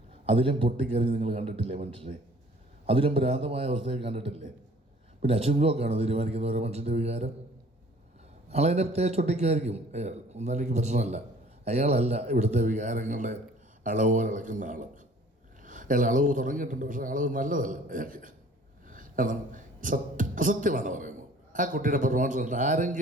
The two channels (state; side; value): normal; both; correlation 0.52